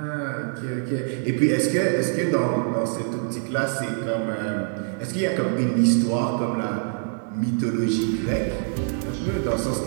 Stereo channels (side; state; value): left; silent; 62 dB below the other